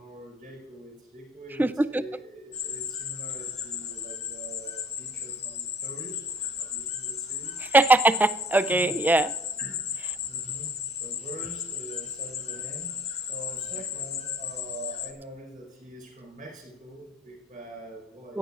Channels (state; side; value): normal; both; correlation 0.57